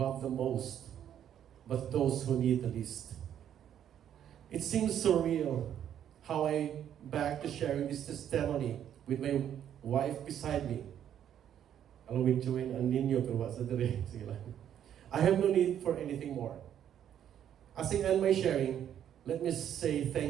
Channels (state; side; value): quieter; left; 9.9 dB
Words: have the most, but those who need the least. It seems surreal how I back to sharing this testimony with my wife beside me. Along with Joanne and Ninyo, pero wasa dire. Sige lang. I have no need for anything more. As I end my sharing, let me say